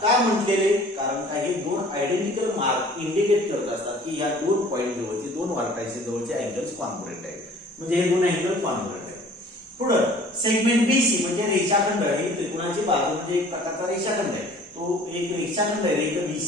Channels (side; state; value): both; normal; correlation 0.50